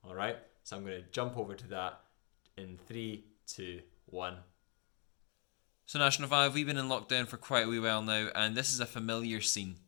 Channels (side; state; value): right; quieter; 35.3 dB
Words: All right? So I'm going to jump over to that in 3, 2, 1. So National 5, we've been in lockdown for quite a wee while now, and this is a familiar scene.